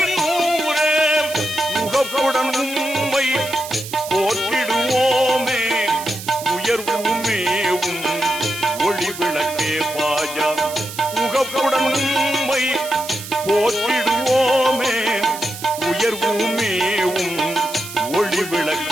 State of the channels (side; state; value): right; noise; hiss, 11 dB below the sound